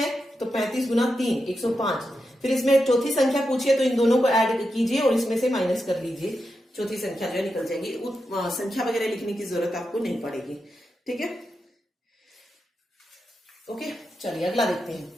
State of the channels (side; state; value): both; normal; correlation 0.88